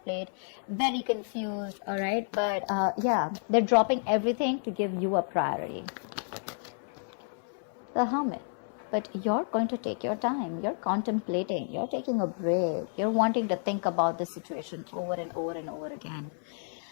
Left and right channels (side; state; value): right; silent; 57 dB below the other